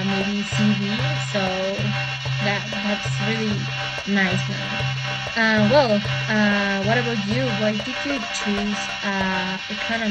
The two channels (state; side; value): identical; both; correlation 1.00